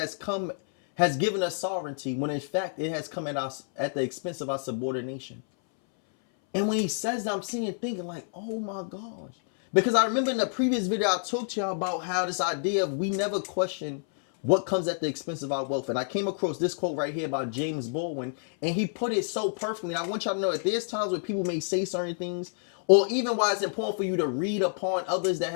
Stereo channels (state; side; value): silent; right; 59 dB below the other